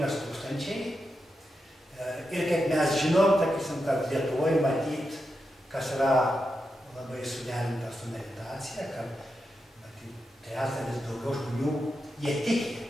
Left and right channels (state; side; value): normal; both; correlation 0.87